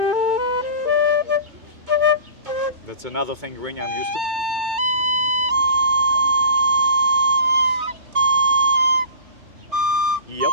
That's another fingering I'm used to. Yep.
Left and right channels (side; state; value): left; late; 3.3 ms